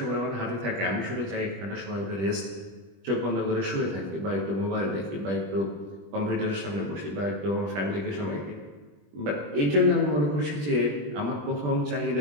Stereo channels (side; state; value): left; late; 20 ms